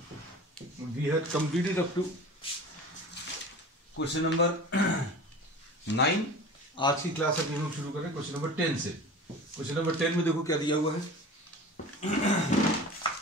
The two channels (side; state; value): both; normal; correlation 0.37